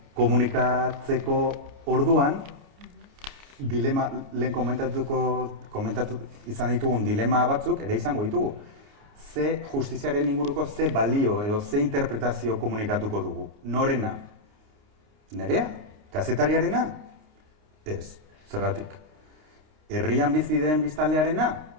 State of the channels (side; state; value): left; late; 29 ms